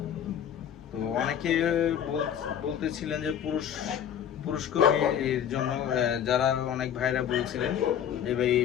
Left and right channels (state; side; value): quieter; right; 9.3 dB